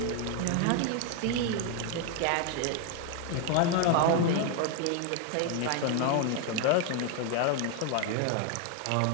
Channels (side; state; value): both; different; correlation 0.01